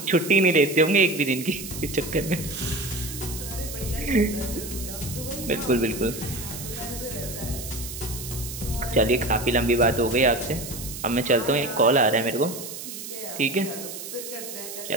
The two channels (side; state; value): right; noise; hiss, 10 dB below the sound